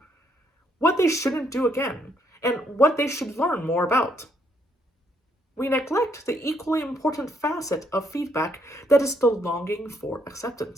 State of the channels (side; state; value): both; normal; correlation 0.72